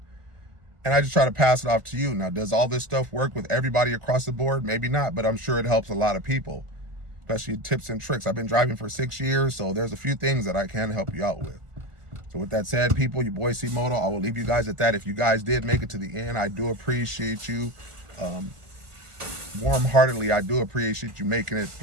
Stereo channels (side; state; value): left; late; 1.4 ms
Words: and I just try to pass it off to you. Now, does all this stuff work with everybody across the board? Maybe not, but I'm sure it helps a lot of people, especially tips and tricks. I've been driving for 6 years, so there's a few things that I can help you out with. So with that said, people, your boy C-Moto, I will leave you guys at that. If you guys did make it to the end, I do appreciate you. Warm-heartedly, I do appreciate you making it